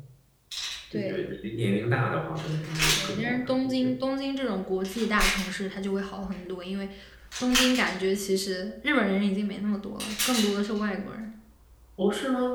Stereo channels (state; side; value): identical; both; correlation 1.00